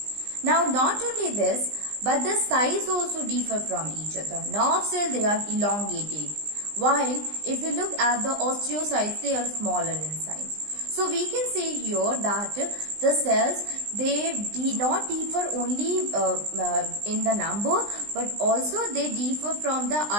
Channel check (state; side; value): late; left; 20 ms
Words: Now not only this, but the size also differ from each other. Nerve cells, they are elongated, while if you look at the osteocytes, they are smaller in size. So we can say here that the cells, they do not differ only in the number, but also they differ from the